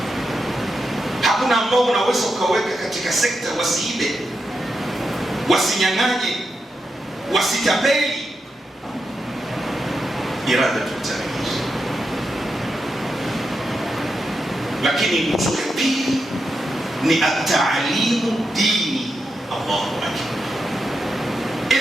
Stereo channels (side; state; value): both; normal; correlation 0.86